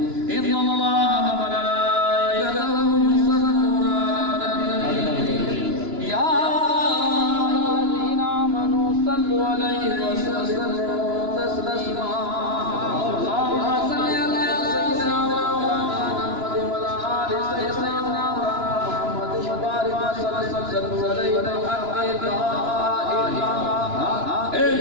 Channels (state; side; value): late; left; 2.9 ms